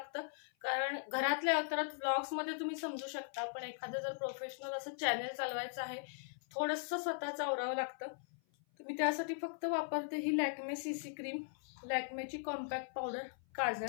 कारण घरातल्या अवतारात व्लॉग्समध्ये तुम्ही समजू शकता, पण एखादं जर प्रोफेशनल असं चॅनल चालवायचं आहे थोडंसं स्वतःचं आवरावं लागतं. मी त्यासाठी फक्त वापरते ही लॅक्मे CC क्रीम, लॅक्मेची कॉम्पॅक्ट पावडर,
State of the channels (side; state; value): right; silent; 52 dB below the other